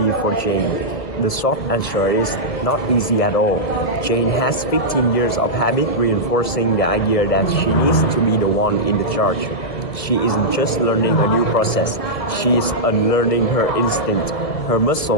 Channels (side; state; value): right; late; 1.7 ms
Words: for Jane? The short answer is not easy at all. Jane has 15 years of habit reinforcing the idea that she needs to be the one in the charge. She isn't just learning a new process, she is unlearning her instinct. Her